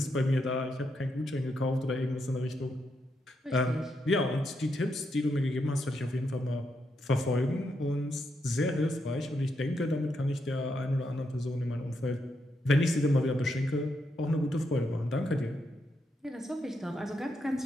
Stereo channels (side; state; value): both; normal; correlation 0.81